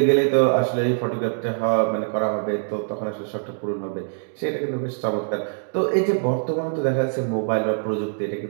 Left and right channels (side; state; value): left; silent; digital silence